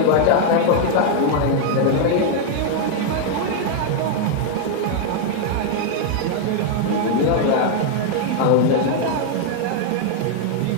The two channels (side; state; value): both; different; correlation -0.01